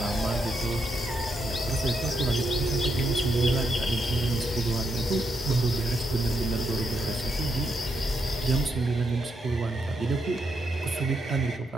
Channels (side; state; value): both; normal; correlation 0.80